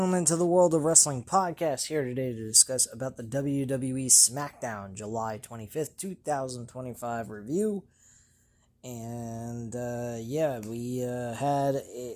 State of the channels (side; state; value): both; identical; correlation 1.00